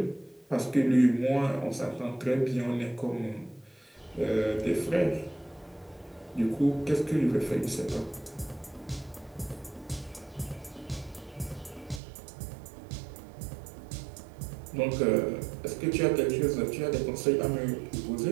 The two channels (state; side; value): drops out; left; at 12.0 s